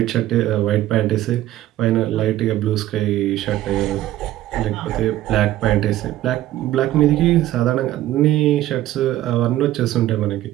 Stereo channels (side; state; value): left; quieter; 14.2 dB